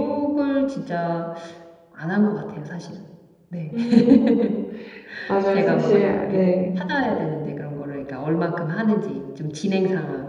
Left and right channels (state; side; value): identical; both; correlation 1.00